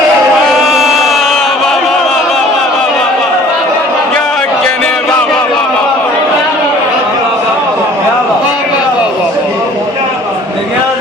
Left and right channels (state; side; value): normal; both; correlation 0.52